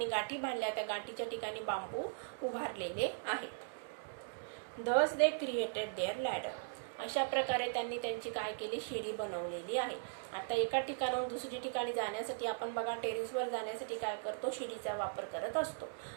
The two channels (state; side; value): silent; left; digital silence